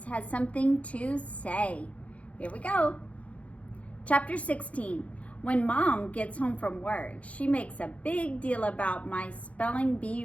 Has Something to Say. Here we go. Chapter 16. When Mom gets home from work, she makes a big deal about my spelling bee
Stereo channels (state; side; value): late; right; 0.065 ms